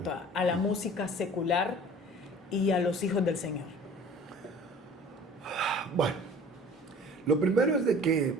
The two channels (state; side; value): normal; both; correlation 0.47